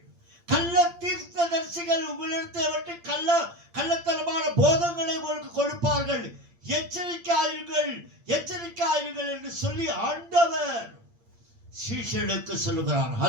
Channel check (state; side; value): late; left; 8.7 ms